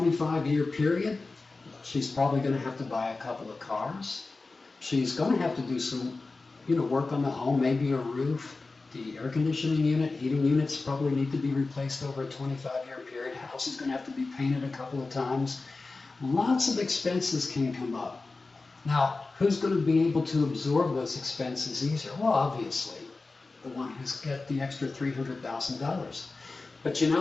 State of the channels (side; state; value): right; quieter; 3.7 dB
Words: period, she's probably going to have to buy a couple of cars. She's going to have to do some, work on the home, maybe a roof. The air conditioning unit, heating units probably need to be replaced over a 25-year period. House is going to have to be painted a couple of times. Lots of expenses can come up. Now, who's going to be able to absorb those expenses easier? Well, obviously, the one who's got the extra $300,000. But